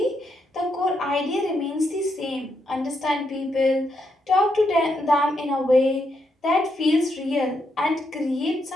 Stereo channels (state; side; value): normal; both; correlation 0.80